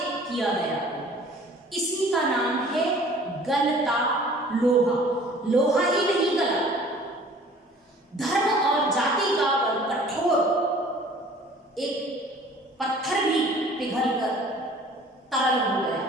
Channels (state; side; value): normal; both; correlation 0.50